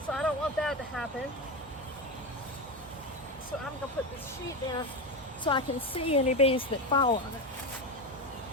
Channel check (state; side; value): normal; both; correlation 0.16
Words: So I don't want that to happen. So I'm going to put this sheet down so I can see any bees that fall on it.